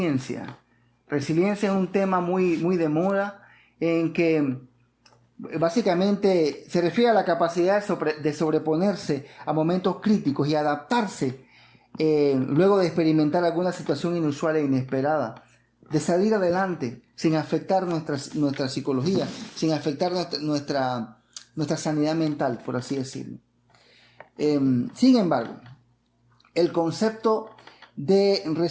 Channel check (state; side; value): identical; both; correlation 1.00